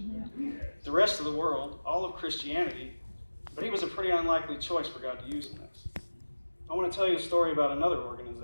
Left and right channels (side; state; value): both; inverted; correlation -1.00